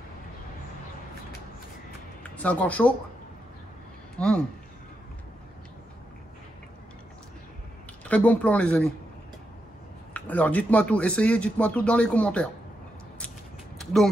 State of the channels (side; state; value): both; normal; correlation 0.84